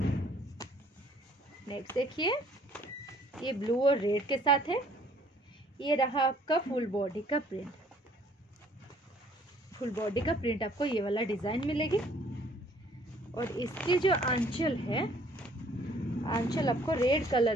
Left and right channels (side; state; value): both; normal; correlation 0.60